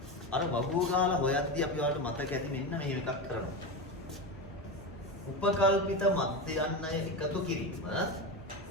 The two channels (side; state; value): both; normal; correlation 0.19